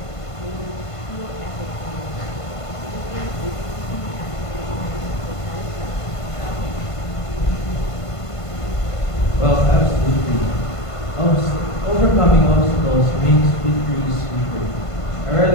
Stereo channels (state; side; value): late; right; 1.5 ms